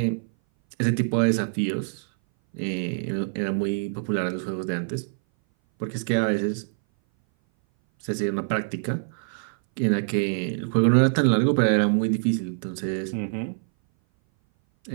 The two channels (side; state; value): left; silent; 59 dB below the other